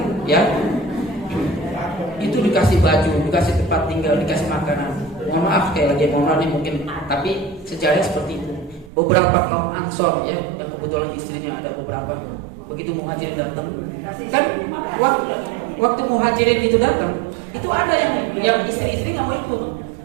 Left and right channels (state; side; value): drops out; left; at 8.9 s